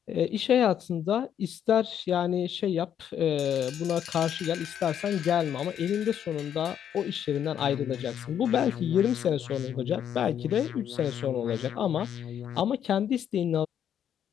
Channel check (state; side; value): quieter; right; 9.3 dB